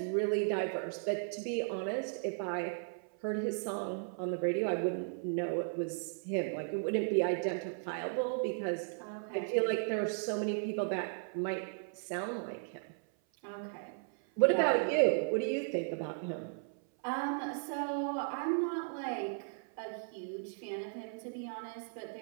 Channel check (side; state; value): left; silent; 54 dB below the other